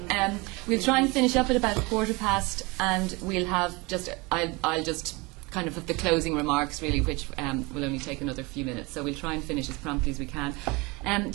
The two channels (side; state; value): left; quieter; 25.7 dB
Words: We'll try and finish up at about 1:15, and we'll have I'll just kind of have the closing remarks, really, which will only take another few minutes. So we'll try and finish as promptly as we can.